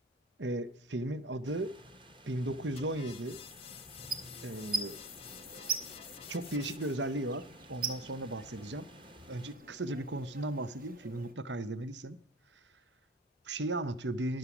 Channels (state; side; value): normal; both; correlation 0.36